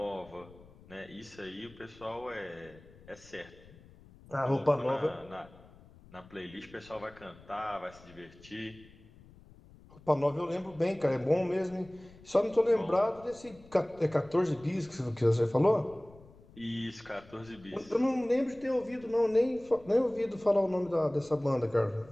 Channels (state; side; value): noise; left; rumble, 23 dB below the sound